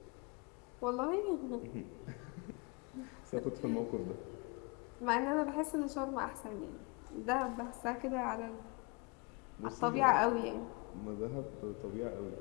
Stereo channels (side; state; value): right; quieter; 30.1 dB